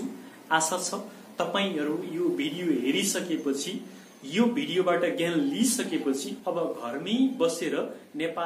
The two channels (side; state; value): both; identical; correlation 1.00